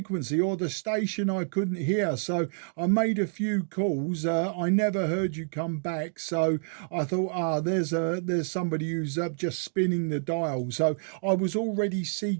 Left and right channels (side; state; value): left; silent; digital silence